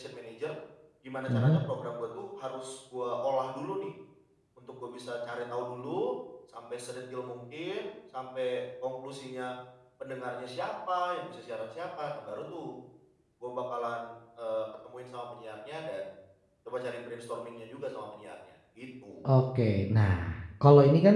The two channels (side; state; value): both; identical; correlation 1.00